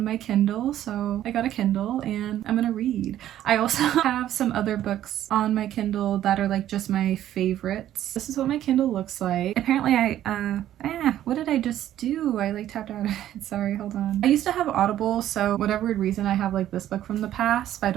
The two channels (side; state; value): left; quieter; 12.2 dB